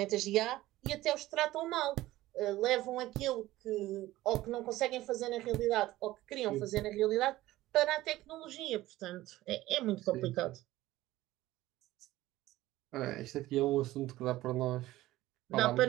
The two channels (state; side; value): quieter; left; 16.5 dB